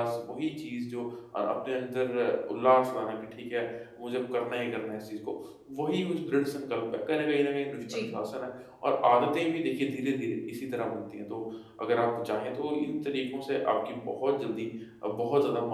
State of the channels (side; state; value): both; identical; correlation 1.00